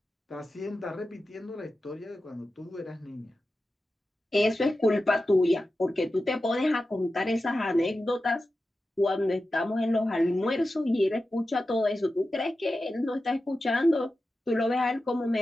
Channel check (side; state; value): both; normal; correlation 0.93